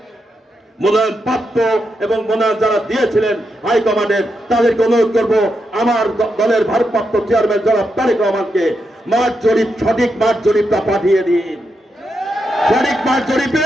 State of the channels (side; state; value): both; normal; correlation 0.84